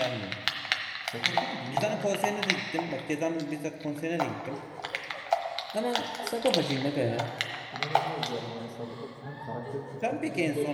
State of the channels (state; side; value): identical; both; correlation 1.00